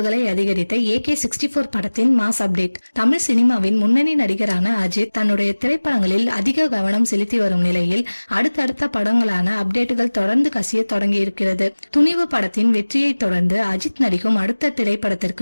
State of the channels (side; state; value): both; inverted; correlation -1.00